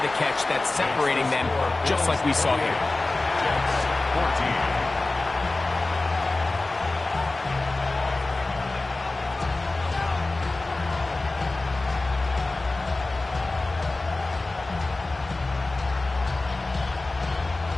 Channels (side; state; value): right; quieter; 3.1 dB